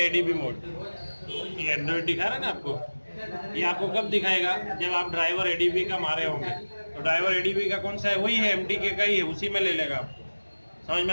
ADB मोड, ये एंड्रॉइड दिखा रहा है ना आपको, ये आपको कब दिखाएगा, जब आप ड्राइवर ADB का मारे होंगे। तो ड्राइवर ADB का कौन सा है, वही है MTK का ही है, उसी में ले लेगा आपको। समझ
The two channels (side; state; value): both; inverted; correlation -1.00